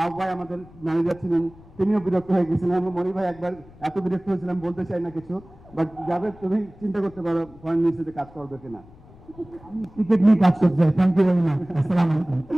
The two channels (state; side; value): noise; left; rumble, 23 dB below the sound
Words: ভাই আমাদের ম্যানেজার ছিলেন, তিনিও বিরক্ত হয়ে গেছিলেন। আমি মনি ভাই একবার এত বিরক্ত হয়েছিলাম, বলতে চাই না কিছু, বাট জাভেদ তুমি চিন্তা করতে পারো ফরেন মিনিস্ট্রিতে কাজ করবে কিনা। আমি ক্রিকেট নিয়ে কাজ করতে চাই। Thank you very much. আসসালামু আলাইকুম।